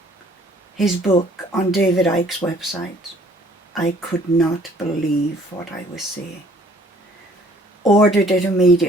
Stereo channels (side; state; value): both; normal; correlation 0.57